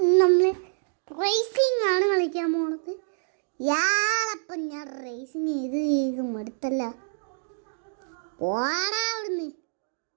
നമ്മൾ റേസിംഗ് ആണ് കളിക്കാൻ പോണത്. യാളപ്പം ഞാൻ റേസിങ് ചെയ്ത് മടുത്തല്ല. പോടാ അവിടുന്ന്.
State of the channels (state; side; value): silent; left; digital silence